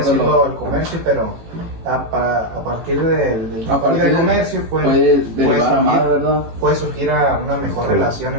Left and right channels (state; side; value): late; left; 18 ms